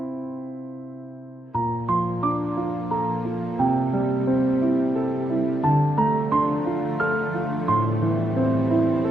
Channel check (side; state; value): both; normal; correlation 0.81